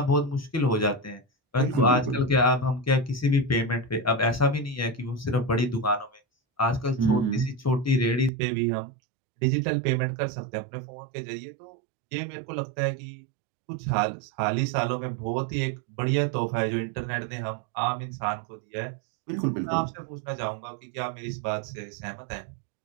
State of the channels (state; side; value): drops out; left; at 8.3 s